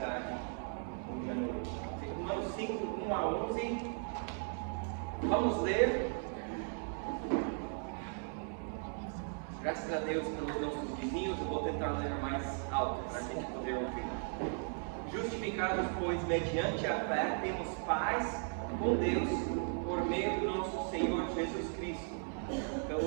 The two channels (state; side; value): silent; left; 53 dB below the other